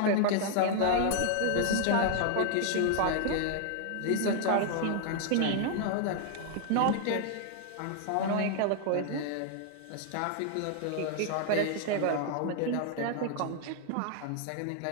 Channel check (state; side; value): different; both; correlation 0.00